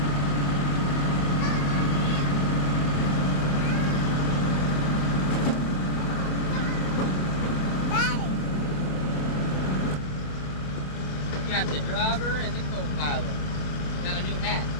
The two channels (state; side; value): late; right; 27 ms